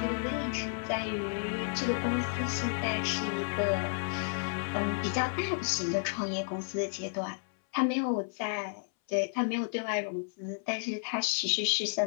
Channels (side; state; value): right; silent; 56 dB below the other